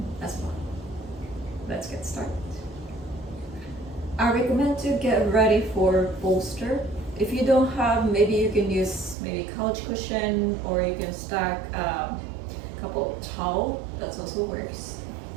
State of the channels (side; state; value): left; drops out; at 9.2 s